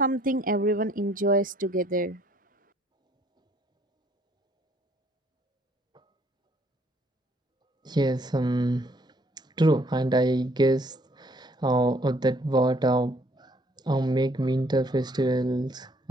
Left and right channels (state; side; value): normal; both; correlation 0.64